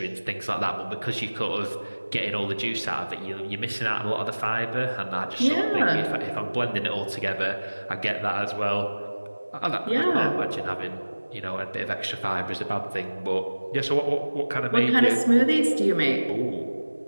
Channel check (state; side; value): inverted; both; correlation -1.00